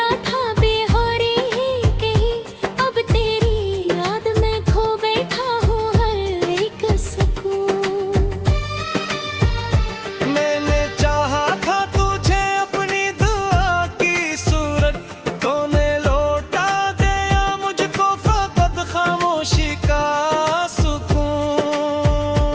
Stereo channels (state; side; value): identical; both; correlation 1.00